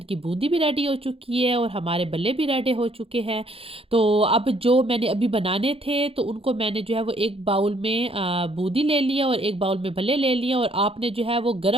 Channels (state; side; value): late; left; 0.27 ms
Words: की बूंदी भी रेडी हो चुकी है और हमारे बल्ले भी रेडी हो चुके हैं। तो अब जो मैंने अभी बनाने थे तो उनको मैंने जो है वो एक बाउल में बूंदी ले लिया और एक बाउल में भल्ले ले लिया और आपने जो है वो